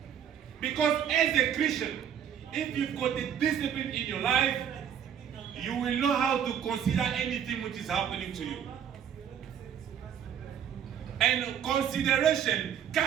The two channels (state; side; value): quieter; left; 8.8 dB